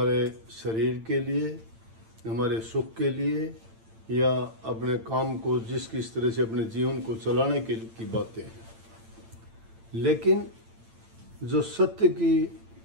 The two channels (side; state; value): left; late; 8.9 ms